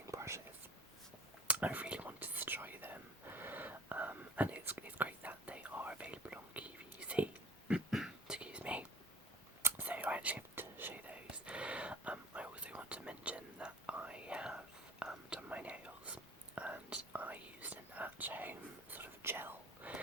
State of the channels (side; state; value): both; normal; correlation 0.44